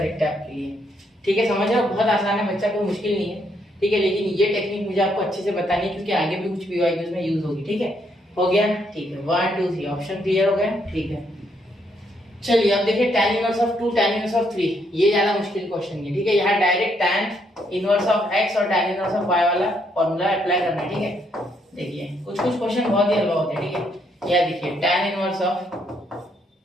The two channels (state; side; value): normal; both; correlation 0.73